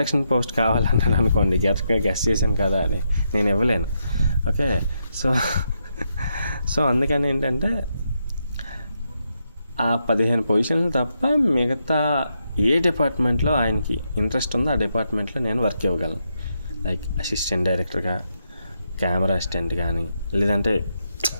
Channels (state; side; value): inverted; both; correlation -0.82